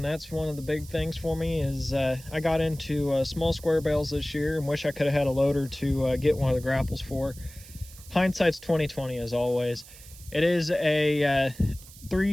that's one of the big things for me is I got into small square bales this year and wish I could have had a loader to get one of the grapples for. Hindsight's 20/20 as always. It is a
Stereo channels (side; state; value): right; noise; hiss, 19 dB below the sound